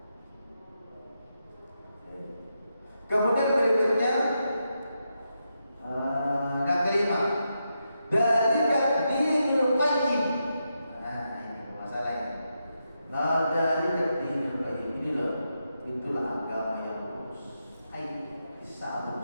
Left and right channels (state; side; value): inverted; both; correlation -0.84